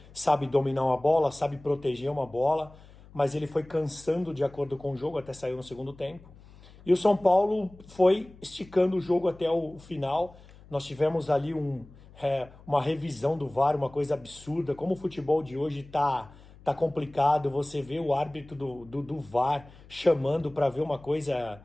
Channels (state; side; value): noise; left; hum, 22 dB below the sound